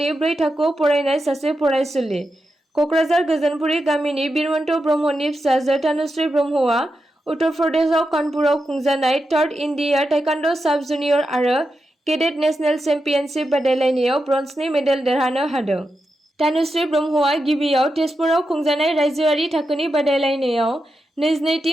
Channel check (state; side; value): normal; both; correlation 0.88